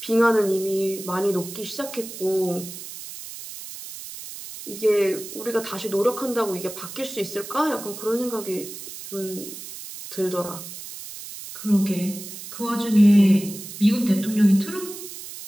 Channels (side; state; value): right; noise; hiss, 12 dB below the sound